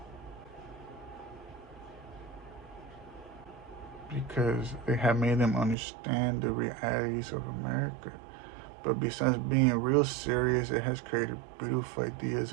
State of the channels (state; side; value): drops out; left; at 5.8 s